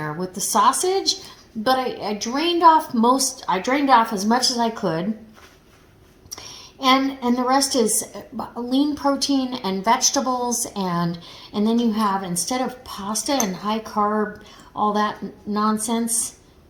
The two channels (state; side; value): identical; both; correlation 1.00